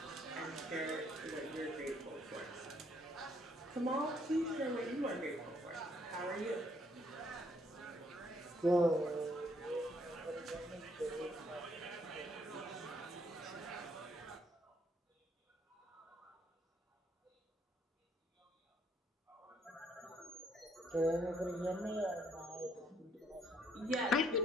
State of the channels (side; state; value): both; normal; correlation 0.68